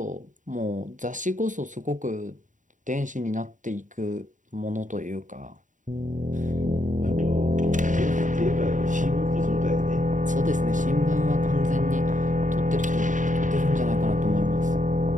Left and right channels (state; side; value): late; left; 0.37 ms